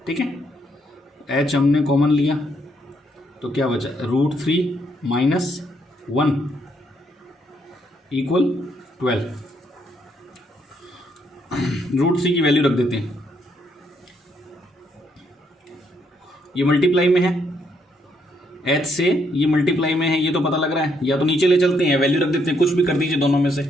ठीक है, h हमने कॉमन लिया तो क्या बचा, √3 माइनस 1 इक्वल 12, √3 की वैल्यू रख देते हैं, ये मल्टीप्लाई में है, h से ये मल्टीप्लाई में है, ये तो पता लग रहा है, या तो नीचे ले चलते हैं, वैल्यू रख देते हैं, कुछ भी कर दीजिए दोनों में से।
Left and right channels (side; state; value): both; normal; correlation 0.74